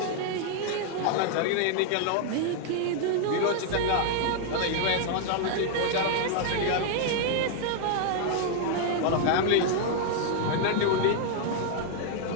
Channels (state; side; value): different; both; correlation 0.00